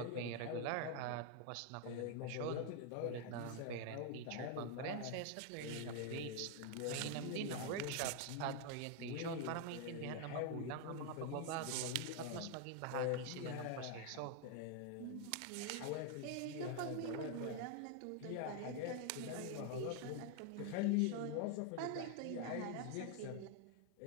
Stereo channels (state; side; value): different; both; correlation 0.00